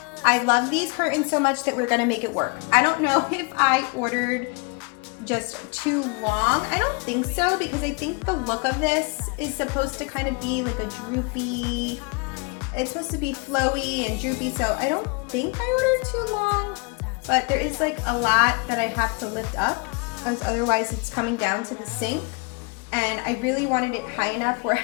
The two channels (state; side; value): quieter; right; 30.8 dB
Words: I love these curtains so much that we're gonna make it work. I don't know if I ordered just too long. I don't think so, because I think the look of this is supposed to kind of be like a droopy, it's supposed to be flowy and droopy, so I don't think I ordered too long, but there is like a lot that I have to lift up, as otherwise it's coming down to the sink, and I really wanted it high enough where